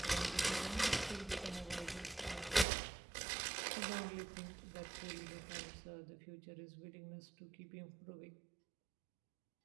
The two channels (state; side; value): drops out; left; at 2.7 s